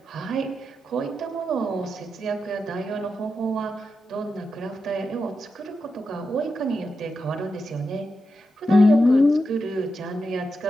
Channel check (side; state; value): both; normal; correlation 0.88